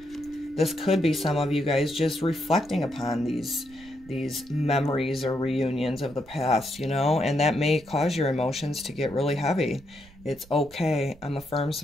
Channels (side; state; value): right; noise; rumble, 23 dB below the sound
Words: This could be some of you guys just reflecting upon these memories or reunions of the past, you know, and that may cause your emotions to get really heavy. It's okay. I'm a firm